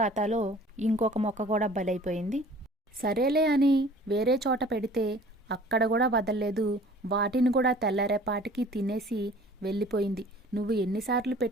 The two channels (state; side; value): normal; both; correlation 0.49